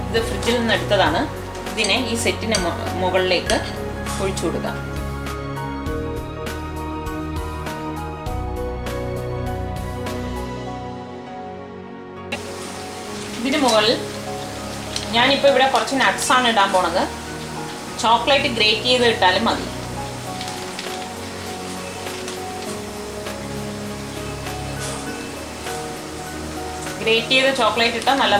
ഫ്രിഡ്ജിൽ നിന്ന് എടുത്തതാണ്. ഇതിനെ ഈ സെറ്റിന് മുകളിലേക്ക് ഒഴിച്ചു കൊടുക്കാം. ഇതിന് മുകളിൽ ഞാനിപ്പോൾ ഇവിടെ കുറച്ച് നട്ട്സാണ് ഇടാൻ പോണത്. ചോക്ലേറ്റ് ഗ്രേറ്റ് ചെയ്ത് ഇട്ടാലും മതി. ഗ്രേറ്റ് ചെയ്ത ചോക്ലേറ്റ് ഇട്ടാൽ നല്ല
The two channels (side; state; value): both; identical; correlation 1.00